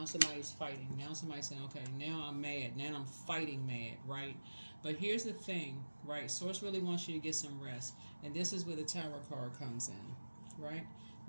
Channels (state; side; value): inverted; both; correlation -1.00